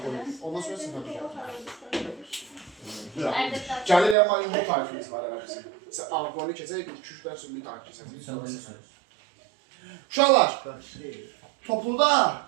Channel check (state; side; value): drops out; left; at 4.2 s